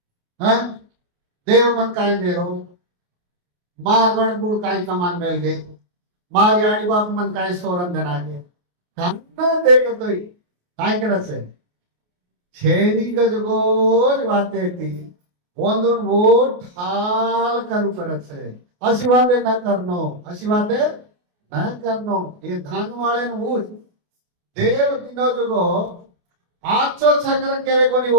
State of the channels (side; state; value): left; late; 28 ms